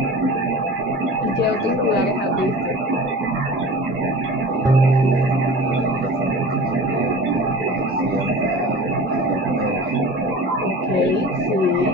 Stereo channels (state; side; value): normal; both; correlation 0.37